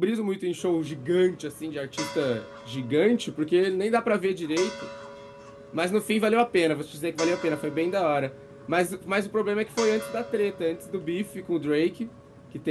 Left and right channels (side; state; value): both; identical; correlation 1.00